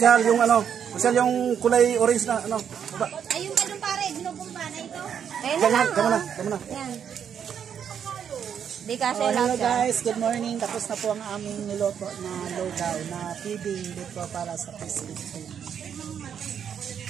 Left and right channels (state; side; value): quieter; left; 8.2 dB